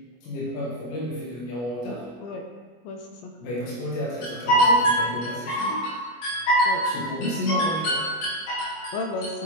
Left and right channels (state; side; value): late; right; 25 ms